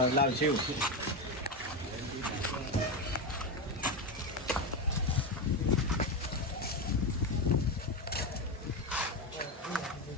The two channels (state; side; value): normal; both; correlation 0.14